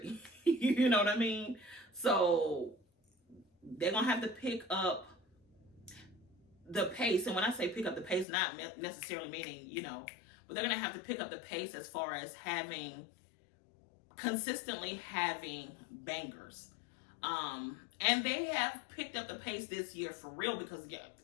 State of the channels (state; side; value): drops out; right; at 8.2 s